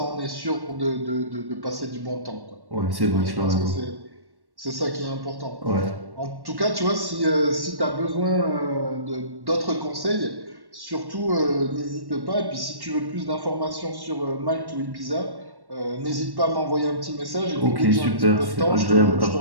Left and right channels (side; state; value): left; late; 1.1 ms